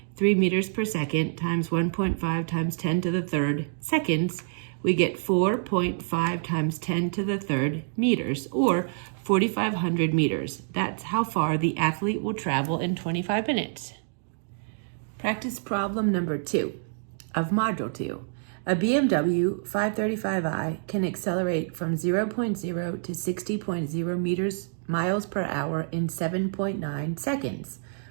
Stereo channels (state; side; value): silent; left; digital silence